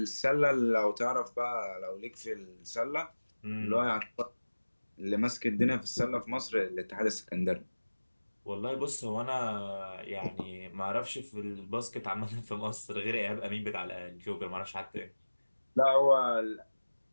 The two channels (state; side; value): inverted; both; correlation -1.00